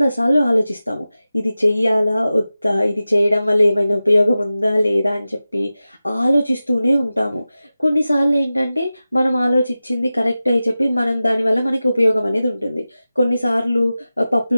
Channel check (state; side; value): inverted; both; correlation -0.95